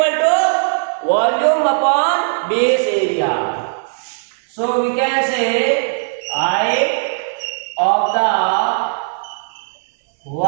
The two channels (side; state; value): left; silent; digital silence